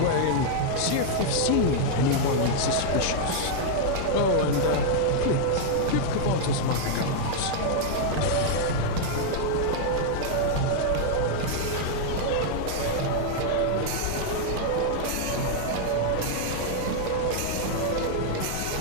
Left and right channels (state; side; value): different; both; correlation -0.01